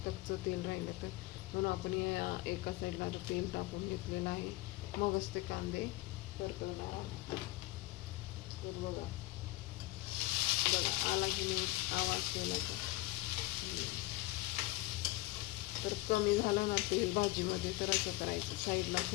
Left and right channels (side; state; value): right; quieter; 19.4 dB